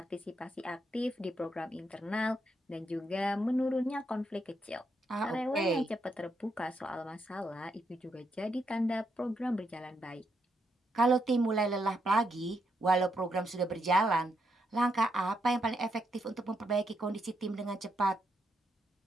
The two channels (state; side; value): normal; both; correlation 0.79